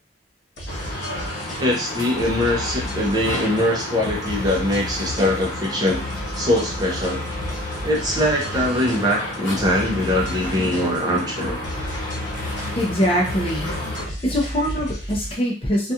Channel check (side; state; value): both; normal; correlation 0.49